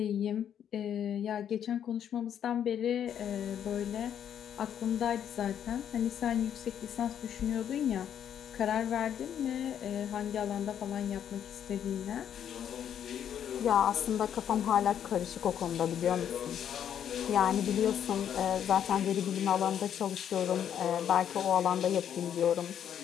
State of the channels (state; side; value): quieter; right; 9.3 dB